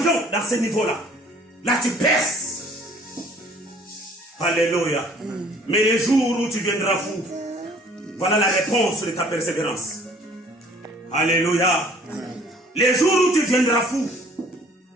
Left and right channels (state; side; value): normal; both; correlation 0.55